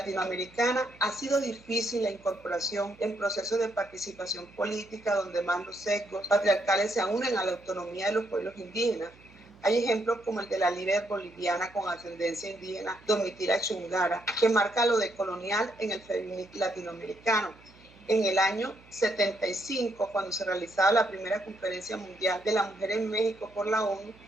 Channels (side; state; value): right; noise; hum, 25 dB below the sound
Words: ha sido difícil la incorporación en procesos de participación política donde más los sesgos patriarcales se unen a la autonomía de los pueblos indígenas. Hay ejemplos como el de la líder boliviana con ascendencia indígena, Domitila Chungara, que marca lo decolonial en el feminismo latinoamericano. En el año 75, cuando se realizaba la primera conferencia mundial de la mujer en México por la ONU,